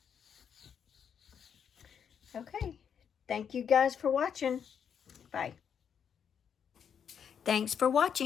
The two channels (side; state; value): right; quieter; 7.7 dB